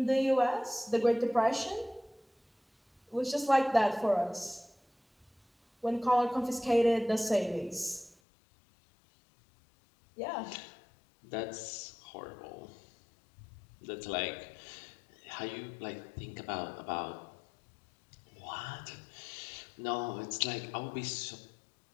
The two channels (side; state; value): right; drops out; at 8.2 s